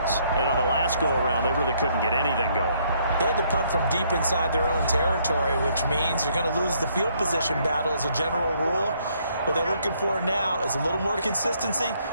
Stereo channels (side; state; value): both; inverted; correlation -0.68